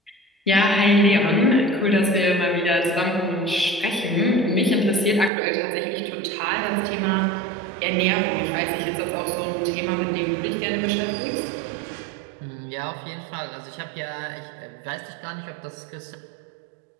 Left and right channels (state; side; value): drops out; left; at 5.3 s